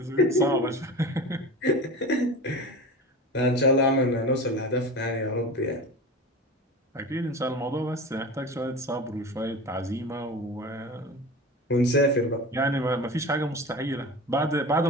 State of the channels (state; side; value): normal; both; correlation 0.32